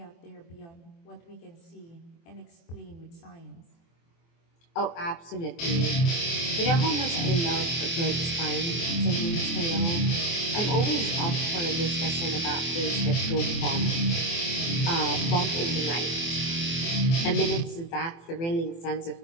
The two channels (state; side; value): late; right; 24 ms